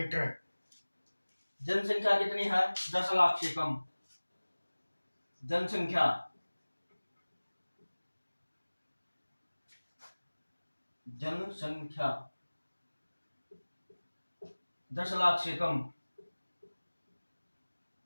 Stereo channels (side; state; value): both; inverted; correlation -1.00